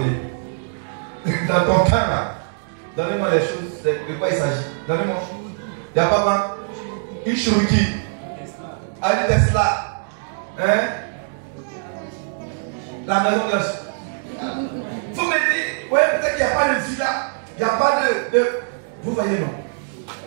Dans ton cas là, donnez-moi les choses, de quoi il s'agit. Donnez-moi. Il n'y a pas une Cherokee, un Tesla, hein? La maison de. Vous me dites, ouais, peut-être qu'il n'y a pas de villa, il n'y a pas de. Vous voyez, non?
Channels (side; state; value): left; silent; digital silence